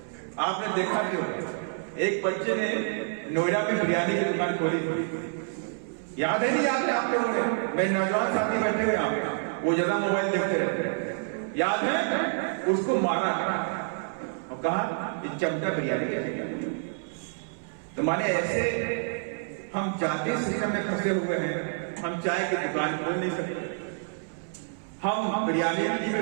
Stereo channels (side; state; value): left; silent; 59 dB below the other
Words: आपने देखा क्यों? एक बच्चे ने नोएडा में बिरयानी की दुकान खोली थी, याद है नहीं याद है आप लोगों ने? मेरे नौजवान साथी बैठे हुए आप, वो ज्यादा मोबाइल देखते रहते, याद है? उसको मारा और कहा ये चमचा बिरयानी कैसे? तो माने ऐसे हम जाति सिस्टम में फंसे हुए हैं। हम चाय की दुकान खोल नहीं सकते, हम बिरयानी नहीं